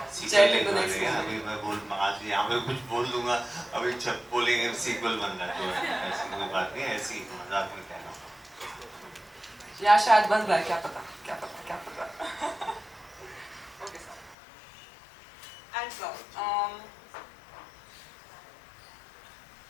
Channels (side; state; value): right; drops out; at 14.4 s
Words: सीक्वल अभी मैं आज यहाँ पे कुछ बोल दूंगा, अभी जब बोलेंगे सीक्वल बन रहा है, तो ऐसी कोई बात नहीं, ऐसी मजाक में कहना. या शायद बन रहा है, क्या पता, क्या पता, क्या पता. Okay, sir. And sir,